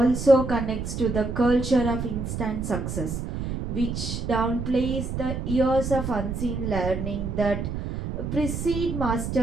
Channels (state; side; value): noise; right; rumble, 4 dB below the sound